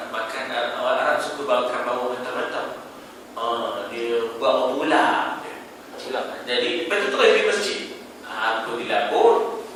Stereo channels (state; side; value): identical; both; correlation 1.00